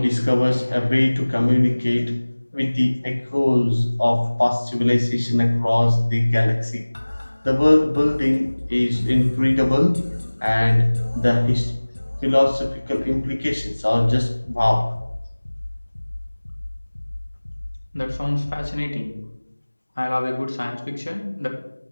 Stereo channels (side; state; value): both; inverted; correlation -1.00